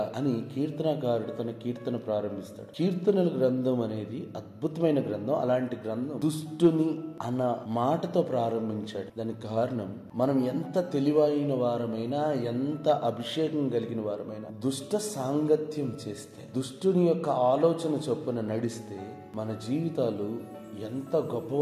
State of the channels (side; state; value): both; identical; correlation 1.00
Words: అని కీర్తనకారుడు తన కీర్తన ప్రారంభిస్తాడు. కీర్తనల గ్రంథం అనేది అద్భుతమైన గ్రంథం. అలాంటి గ్రంథం దుష్టుని అన్న మాటతో ప్రారంభించాడు. దానికి కారణం, మనం ఎంత తెలివైన వారమైనా, ఎంత అభిషేకం కలిగిన వారమైనా, దుష్ట సాంగత్యం చేస్తే, దుష్టుని యొక్క ఆలోచన చొప్పున నడిస్తే మన జీవితాలు ఎంత